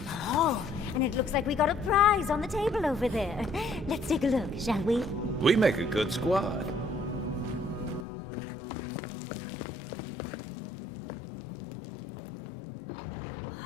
Oh, and it looks like we got a prize on the table over there. Let's take a look, shall we? We make a good squad.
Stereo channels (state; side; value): drops out; right; at 8.1 s